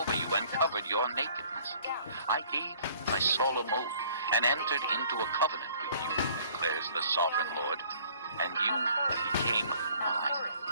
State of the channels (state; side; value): inverted; both; correlation -0.56